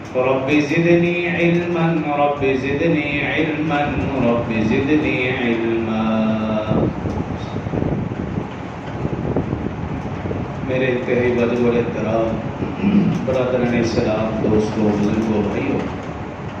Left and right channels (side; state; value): both; identical; correlation 1.00